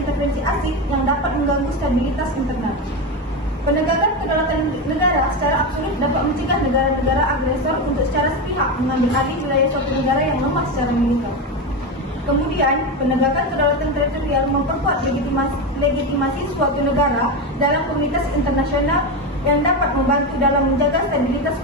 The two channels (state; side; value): normal; both; correlation 0.16